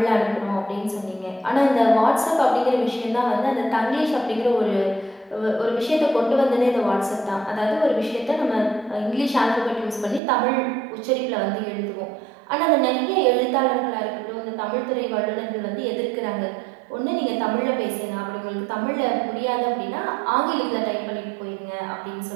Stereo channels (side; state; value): left; drops out; at 10.2 s